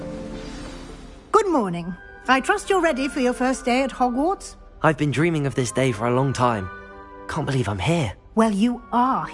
Good morning. I trust you're ready for your first day at Hogwarts? I've been dreaming of this day for a long time. Can't believe I'm here. Well, you are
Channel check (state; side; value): identical; both; correlation 1.00